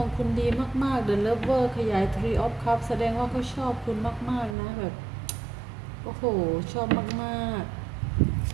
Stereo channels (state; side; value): drops out; left; at 4.5 s